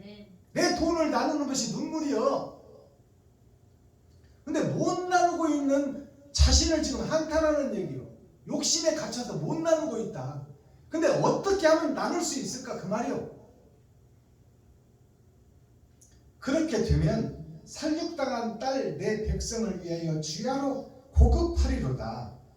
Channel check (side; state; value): both; identical; correlation 1.00